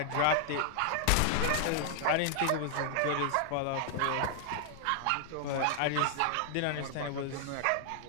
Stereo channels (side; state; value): both; different; correlation 0.00